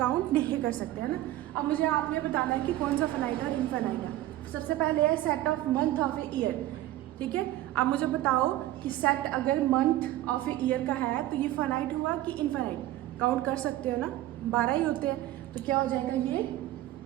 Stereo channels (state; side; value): quieter; left; 15.0 dB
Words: काउंट नहीं कर सकते हैं ना। अब मुझे आपने बताना है कि कौन सा फाइनाइट है और इनफाइनाइट है। सबसे पहले है set of month of a year, ठीक है। अब मुझे बताओ कि सेट अगर मंथ ऑफ ए ईयर का है तो ये फाइनाइट हुआ कि इनफाइनाइट, काउंट कर सकते हो ना, 12 ही होते हैं, तो क्या हो जाएगा ये